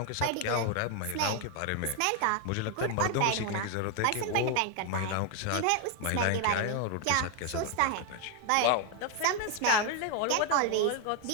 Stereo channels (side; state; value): both; different; correlation 0.01